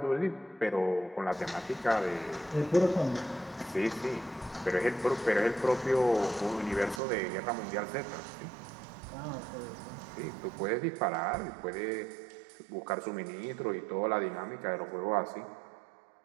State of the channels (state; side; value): drops out; left; at 7.0 s